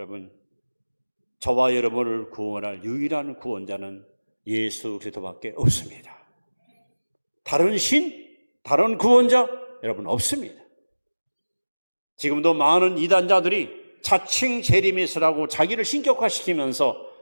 저와 여러분을 구원할 유일한 구원자는 예수 그리스도밖에 없습니다. 다른 신, 다른 구원자 여러분 없습니다. 지금도 많은 이단자들이 자칭 재림이스라고 자기를 신격화시키면서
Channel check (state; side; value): inverted; both; correlation -1.00